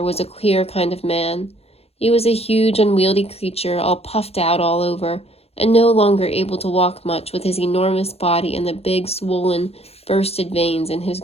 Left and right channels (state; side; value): late; right; 0.29 ms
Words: was a queer kind of man. He was a huge, unwieldy creature, all puffed out all over, and no longer able to walk much with his enormous body and the big, swollen, bursted veins in his